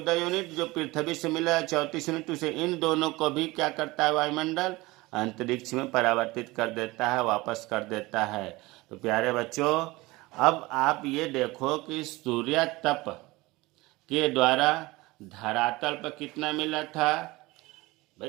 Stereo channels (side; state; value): left; quieter; 21.3 dB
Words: यूनिट, जो पृथ्वी से मिला 34 यूनिट, उसे इन दोनों को भी क्या करता है? वायुमंडल अंतरिक्ष में परावर्तित कर देता है, वापस कर देता है। तो प्यारे बच्चों, अब आप ये देखो कि सूर्य तप के द्वारा धरातल पर कितना मिला था? भाई